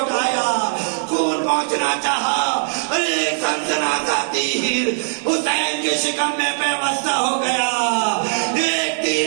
خون پہنچنا چاہا. ایک سنسناتا تیر حسین کے شکم میں پیوستہ ہو گیا. ایک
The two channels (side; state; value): left; silent; digital silence